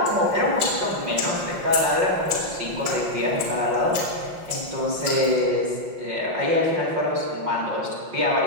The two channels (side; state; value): left; late; 5.7 ms